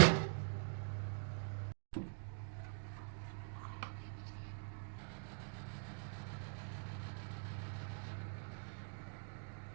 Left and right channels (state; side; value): silent; left; digital silence